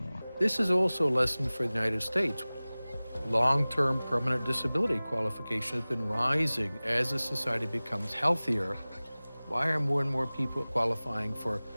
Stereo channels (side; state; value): both; inverted; correlation -0.99